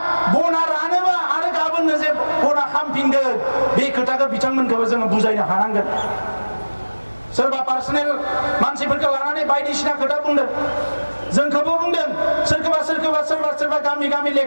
बना रानोबा आरो गाबोननो जे बना खामफिनगोन बे खोथाखौ बिथांमोनखौबो जोङो बुजायनो हानांगोन। सोरबा पार्सनेल मानसिफोरखौ लानानै बायदिसिना खोथा बुंदों जोंखौबो बुंदों सोरबा गामि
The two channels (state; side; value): inverted; both; correlation -1.00